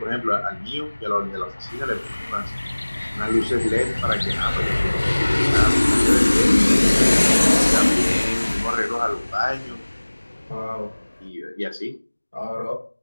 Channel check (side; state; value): both; inverted; correlation -1.00